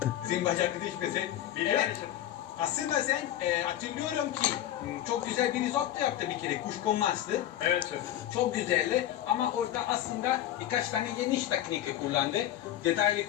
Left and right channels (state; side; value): quieter; right; 12.4 dB